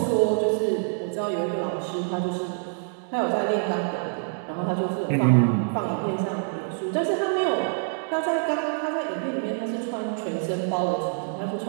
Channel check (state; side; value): silent; left; digital silence